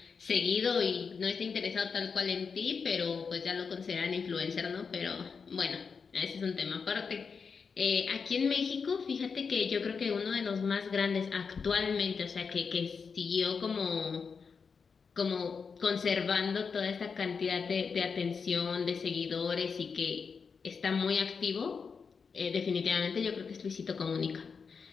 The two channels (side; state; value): right; quieter; 5.6 dB